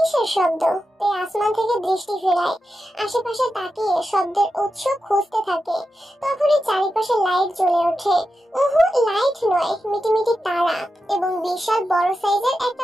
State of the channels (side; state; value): both; normal; correlation 0.90